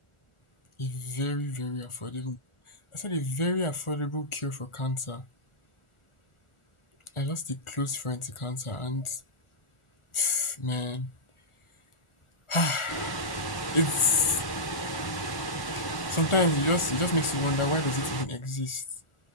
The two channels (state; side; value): late; right; 1.4 ms